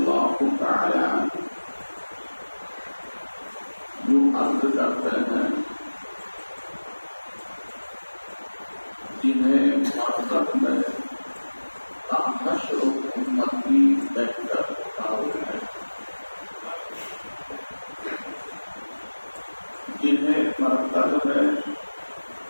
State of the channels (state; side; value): inverted; both; correlation -1.00